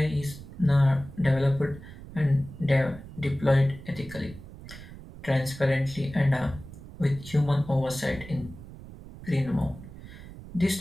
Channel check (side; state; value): right; noise; rumble, 15 dB below the sound